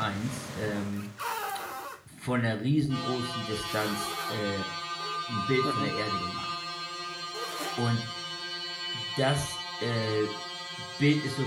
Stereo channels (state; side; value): identical; both; correlation 1.00